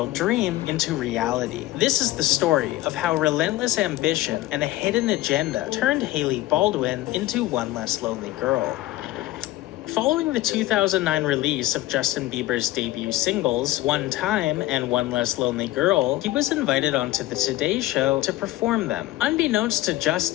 dream into reality. This is the story of how relentless ambition and a hidden agenda turned Hailey Baldwin into one less lonely girl. Following the 2009 release of Justin Bieber's debut singles, One Time and One Less Lonely Girl, he was invited onto the Today Show to perform them. Unbeknownst to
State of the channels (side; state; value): right; quieter; 16.6 dB